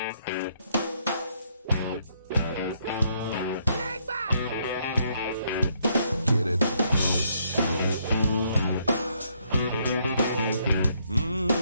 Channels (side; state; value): both; inverted; correlation -0.72